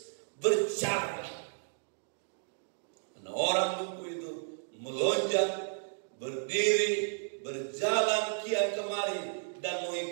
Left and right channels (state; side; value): silent; left; digital silence